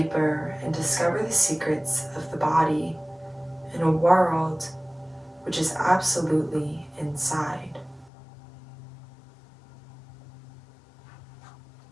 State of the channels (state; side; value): drops out; right; at 8.1 s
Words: and discover the secrets of the body in a world which is absolutely inside.